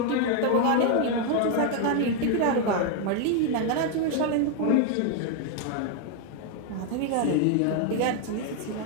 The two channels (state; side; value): different; both; correlation 0.01